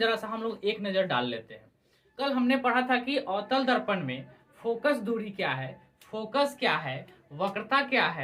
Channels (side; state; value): both; identical; correlation 1.00